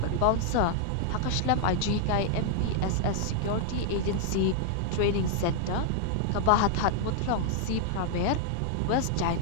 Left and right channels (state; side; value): different; both; correlation 0.00